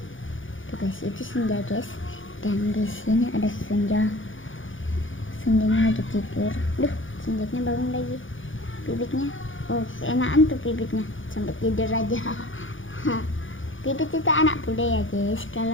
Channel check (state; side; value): late; right; 0.57 ms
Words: Tuh guys, itu senja guys. Dan di sini ada senjanya lagi tidur. Duh, senjanya bangun lagi. Bibitnya, keenakan tuh bibitnya sampai tidur aja. Bibit itu anak bule ya guys,